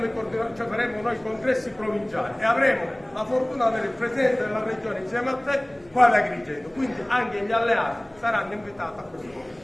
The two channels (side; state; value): right; noise; hum, 29 dB below the sound